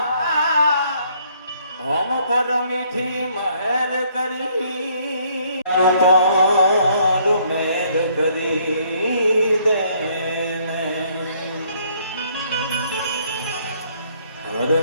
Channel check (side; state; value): both; inverted; correlation -0.66